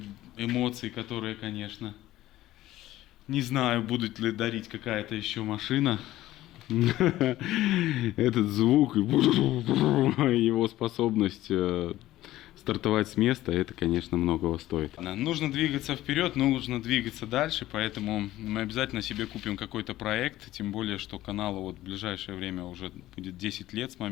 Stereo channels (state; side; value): quieter; right; 15.3 dB